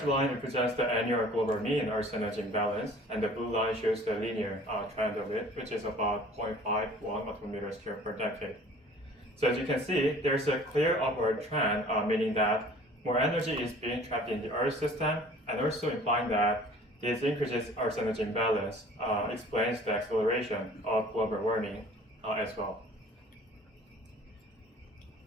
line represents the annual global mean Earth energy imbalance, and the blue line shows the linear trend of it, which is about 0.51 atometers squared per decade. So as you can see, there's a clear upward trend, meaning that more energy is being trapped in the Earth system, and also implying that this increases Earth's energy imbalance explains the acceleration of global warming as well.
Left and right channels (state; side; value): normal; both; correlation 0.49